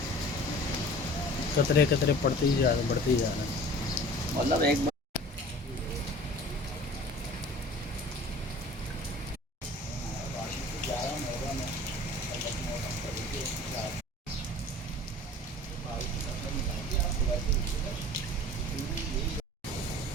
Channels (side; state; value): both; normal; correlation 0.44